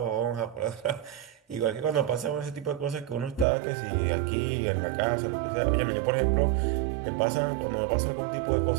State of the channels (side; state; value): left; drops out; at 3.5 s